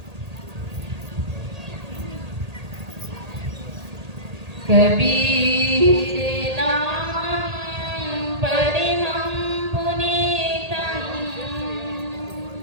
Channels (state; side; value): late; left; 1.8 ms